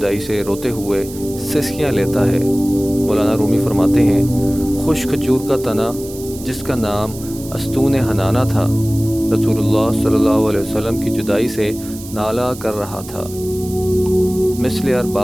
سے روتے ہوئے سسکیاں لیتا ہے۔ مولانا رومی فرماتے ہیں، خشک کھجور کا تنا جس کا نام استون حنانہ تھا، رسول اللہ صلی اللہ علیہ وسلم کی جدائی سے نالہ کر رہا تھا، مثل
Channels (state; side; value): noise; right; hiss, 16 dB below the sound